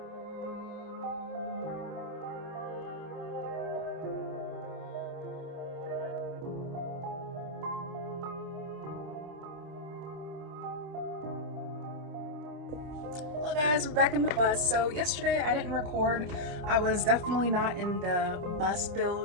Hello guys, we're back in the bus. So yesterday I didn't record. I was definitely not in the bus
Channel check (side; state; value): left; late; 27 ms